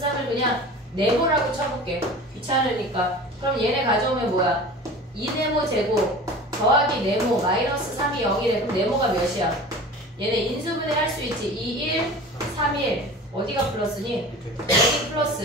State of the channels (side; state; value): both; normal; correlation 0.38